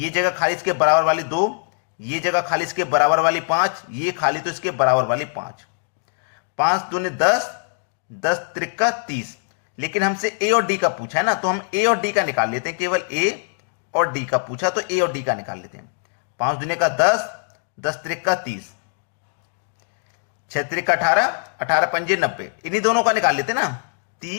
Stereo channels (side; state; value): right; silent; digital silence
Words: जगह खाली इसके बराबर वाली 2, ये जगह खाली इसके बराबर वाली 5, ये खाली तो इसके बराबर वाली 5। 5 दूनी 10, 10 त्रिका 30। लेकिन हमसे ए और डी का पूछा है ना, तो हम ए और डी का निकाल लेते हैं। केवल ए और डी का पूछा तो ए और डी का निकाल लेते हैं। 5 दूनी का 10, 10 त्रिका 30, 6 त्रिका 18, 18 पंजे 90, इन्हीं दोनों का निकाल लेते ना,